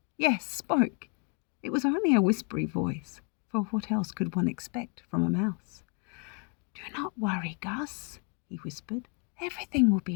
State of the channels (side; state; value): right; quieter; 34.2 dB